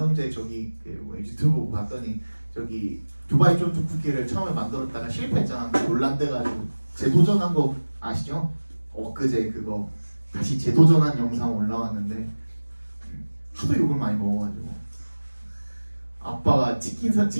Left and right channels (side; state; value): both; inverted; correlation -1.00